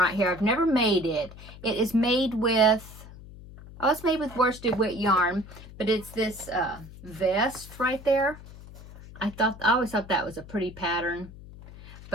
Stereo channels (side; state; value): left; noise; hum, 17 dB below the sound